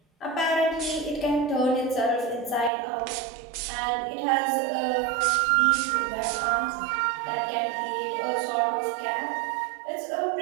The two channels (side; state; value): left; drops out; at 2.7 s